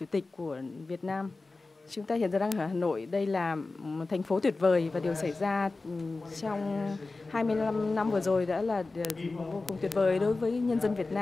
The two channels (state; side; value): quieter; right; 3.5 dB